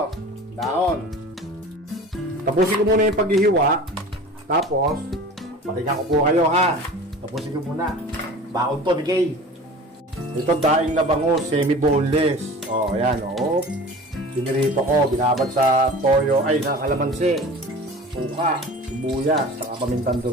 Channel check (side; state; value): both; normal; correlation 0.39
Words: Dahon. Tapusin ko muna yung paghihiwa. Tapos, patingnan ko po kayo, ha? Tapusin ko muna. Baon to ni Kay. Ito daing na bango, semi-boneless. Ayan, Sinirito ko, binabad sa toyo, sa kalamansi, suka, sibuyas, saka pamintang